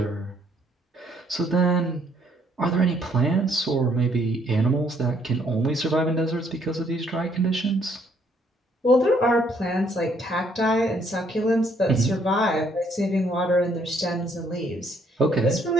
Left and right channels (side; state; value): both; normal; correlation 0.67